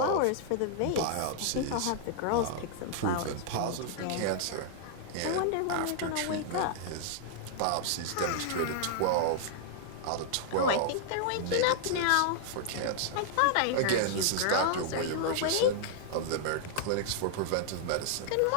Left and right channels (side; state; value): both; different; correlation -0.01